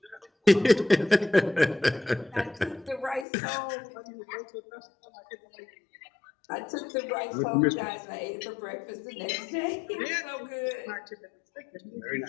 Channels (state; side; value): drops out; right; at 3.2 s